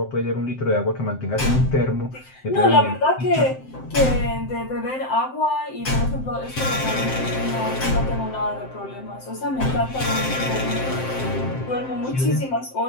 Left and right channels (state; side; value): late; right; 7.7 ms